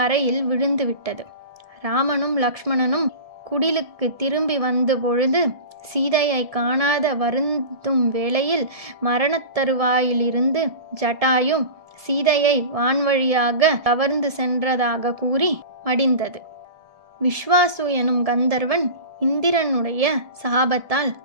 விழுந்துவிட்டது. ராமனும் லக்ஷ்மணனும் குடிலுக்கு திரும்பி வந்த பொழுது சீதையை காணாத வருந்தும் வேளையில் மரணத்தருவாயிலிருந்து ஜட்டாயு சீதையை வான்வழியாக கவர்ந்து சென்றதாக கூறி மடிந்தது. விஸ்வாசு எனும் கந்தர்வன் இந்திரனுடைய சாபத்தால்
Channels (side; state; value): left; late; 1.7 ms